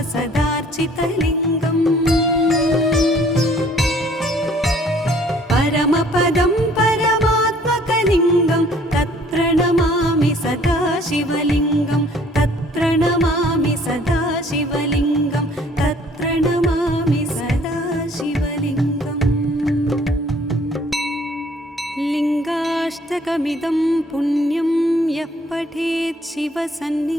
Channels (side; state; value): both; normal; correlation 0.58